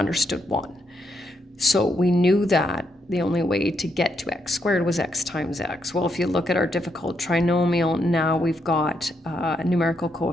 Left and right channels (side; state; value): both; normal; correlation 0.79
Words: 1. So we knew that the only way to get to x squared was x times x. Well, if you look at our difficult trinomial, now we've got a numerical